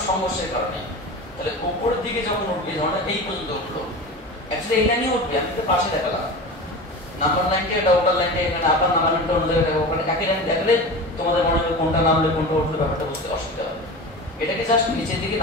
সংঘর্ষের কারণে। তাহলে উপরের দিকে যখন উঠবে, ধরো এই পর্যন্ত উঠলো, অ্যাকচুয়ালি এই লাইনে উঠবে, আমি তো পাশে দেখালাম নাম্বার লাইনটা, এটা ওটার লাইনটা, এখানে আবার নাম্বার লাইনটা অন্য জায়গায় দেখাবো, ওখানে একই লাইন দেখলে তোমাদের মনে হবে কোনটা নামলে কোনটা উঠলে ব্যাপারটা বুঝতে অসুবিধা হবে। এটাকে জাস্ট নিচের দিকে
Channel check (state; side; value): normal; both; correlation 0.30